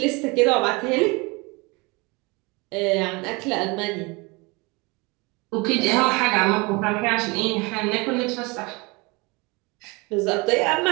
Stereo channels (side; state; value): left; quieter; 26.8 dB